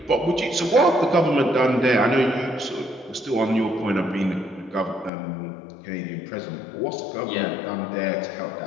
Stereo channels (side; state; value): right; drops out; at 5.1 s